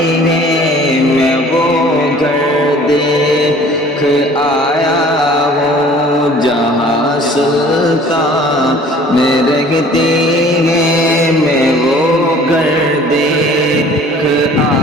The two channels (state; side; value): normal; both; correlation 0.50